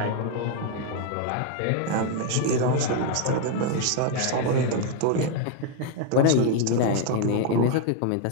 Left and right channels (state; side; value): different; both; correlation 0.00